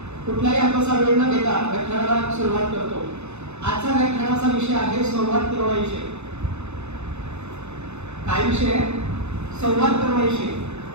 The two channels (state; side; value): late; left; 0.81 ms